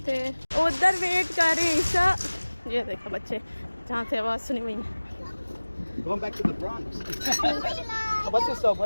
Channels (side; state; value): both; inverted; correlation -1.00